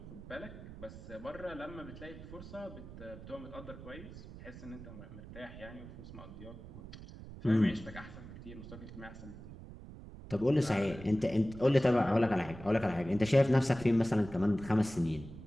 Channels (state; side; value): noise; right; rumble, 14 dB below the sound